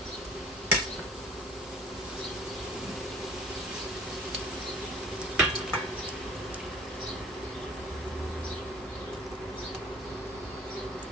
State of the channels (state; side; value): normal; both; correlation 0.48